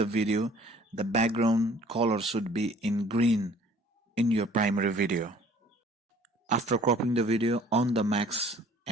video, the background color should be in green in your primary video. After cropping the video, on the max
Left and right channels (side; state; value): both; normal; correlation 0.54